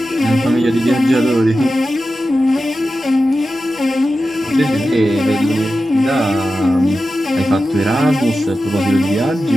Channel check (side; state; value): both; normal; correlation 0.92